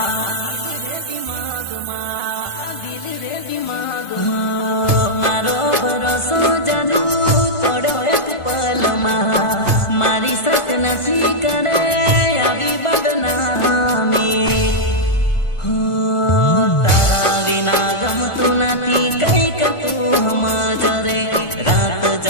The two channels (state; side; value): late; right; 1.4 ms